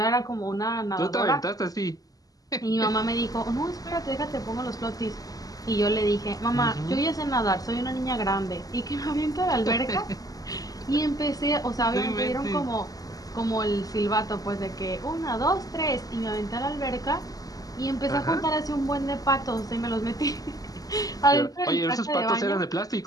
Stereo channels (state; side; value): late; right; 0.17 ms